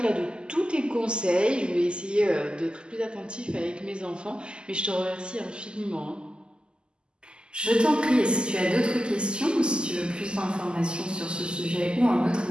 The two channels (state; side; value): late; left; 0.048 ms